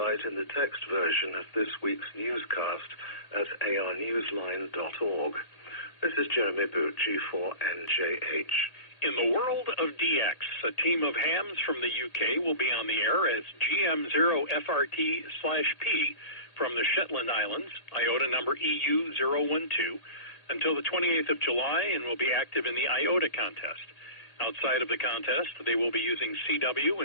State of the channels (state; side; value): late; right; 1.9 ms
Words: in the text version of this week's newscast at arnewsline.org. This is Jeremy Boot, G4NJH. In the world of DX, a team of hams from the UK will be on the air as GM0FRT/P from the Shetland Islands, IOTA number EU012, until the 28th of July and will be active in the IOTA contest. Outside of the contest, they will be using CW